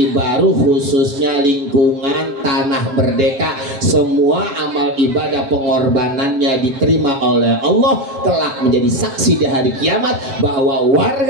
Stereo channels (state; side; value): late; left; 7.6 ms